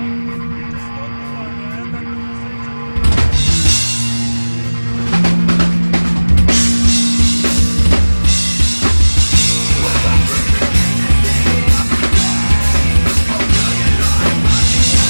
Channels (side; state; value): both; inverted; correlation -1.00